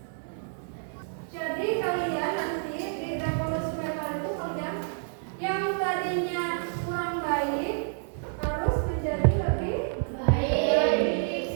Jadi kalian nanti di revolusi mental itu kalian yang tadinya kurang baik harus menjadi lebih baik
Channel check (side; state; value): left; silent; 59 dB below the other